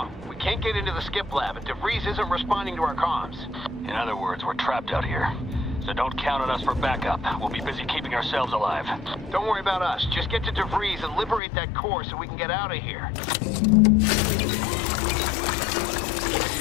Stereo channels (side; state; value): right; drops out; at 11.4 s